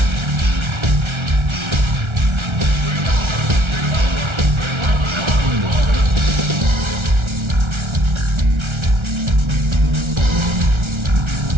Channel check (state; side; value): late; left; 1.3 ms